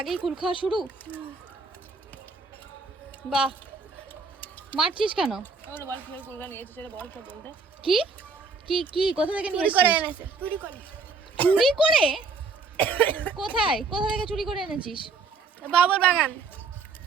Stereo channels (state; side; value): quieter; left; 4.5 dB